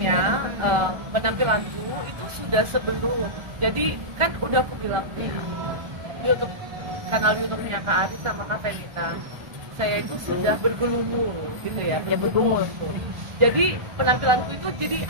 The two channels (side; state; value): left; late; 1.4 ms